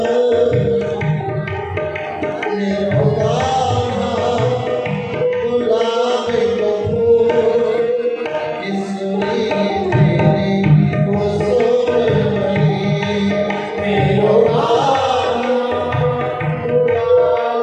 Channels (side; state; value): both; identical; correlation 1.00